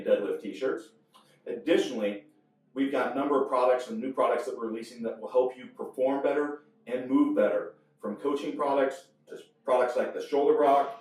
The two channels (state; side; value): identical; both; correlation 1.00